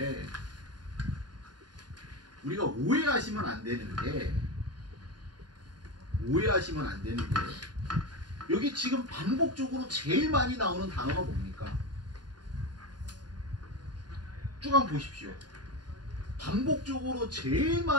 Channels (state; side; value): late; left; 0.70 ms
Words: 우리가 오해하시면 안 되는 게 여기 지금 반복적으로 제일 많이 나오는 단어가 뭡니까? 쭉 한번 보십시오. 반복적으로 제일